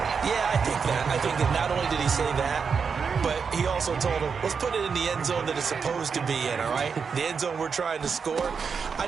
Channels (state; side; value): quieter; left; 5.9 dB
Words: Yeah, I think that. I think that not only did he say that, but he also told him, let's put it in the end zone that it's supposed to be in, all right? The end zone we're trying to score. I